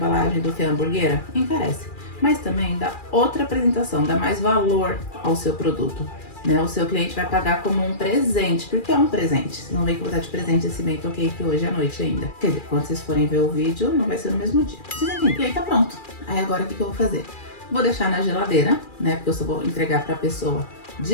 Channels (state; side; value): late; right; 2.4 ms